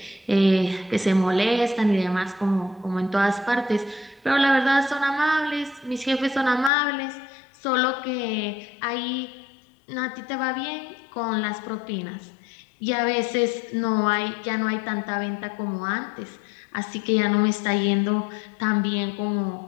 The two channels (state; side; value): drops out; right; at 6.7 s